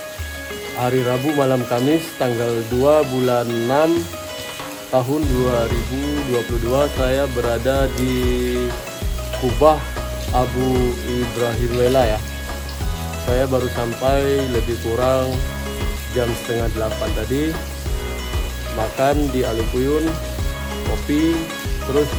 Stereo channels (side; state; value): both; identical; correlation 1.00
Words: hari Rabu malam Kamis tanggal 2 bulan 6 tahun 2022, saya berada di Kubah Abu Ibrahim Lela ya. Saya baru sampai lebih kurang jam setengah 8 tadi, makan di Alukuyun, kopi, terus